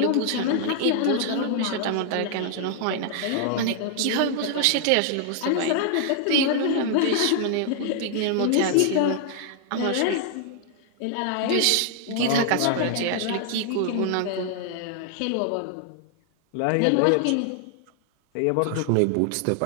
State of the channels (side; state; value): both; different; correlation 0.00